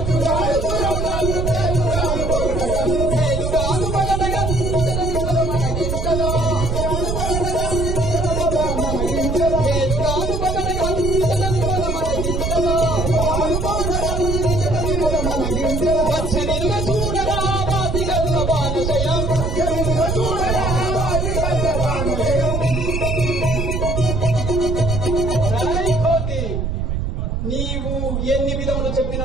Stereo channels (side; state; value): right; noise; rumble, 1 dB below the sound